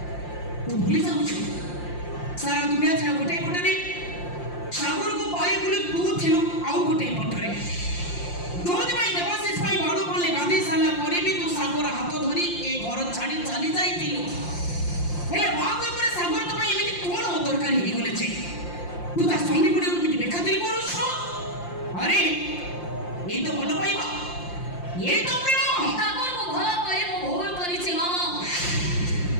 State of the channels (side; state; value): right; late; 5.7 ms